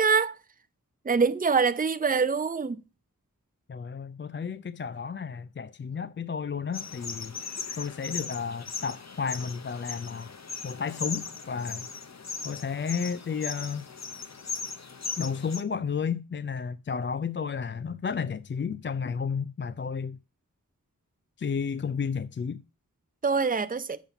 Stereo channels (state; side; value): normal; both; correlation 0.20